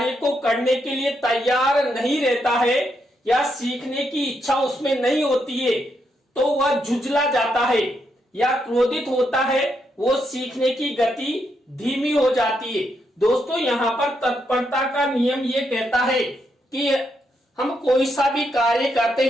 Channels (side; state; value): both; normal; correlation 0.80